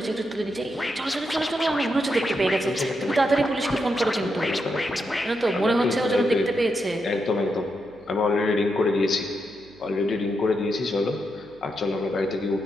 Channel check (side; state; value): right; noise; hum, 29 dB below the sound